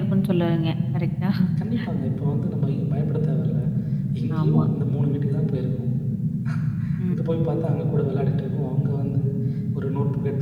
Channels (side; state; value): both; identical; correlation 1.00